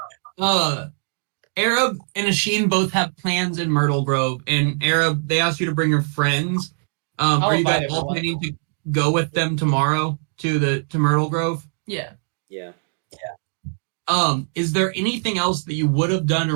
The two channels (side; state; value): left; silent; 61 dB below the other